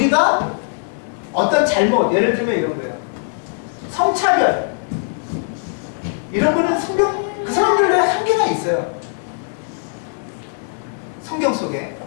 어떤 잘못, 예를 들면 이런 거예요. 성차별 이런 거는 성경, 그 사람들의 한계가 있어요. 성경 속에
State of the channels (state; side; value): silent; right; 60 dB below the other